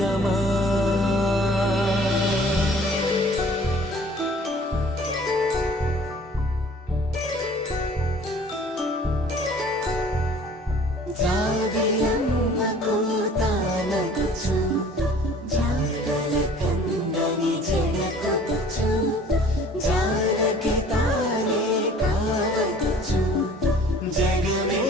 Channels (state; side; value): normal; both; correlation 0.51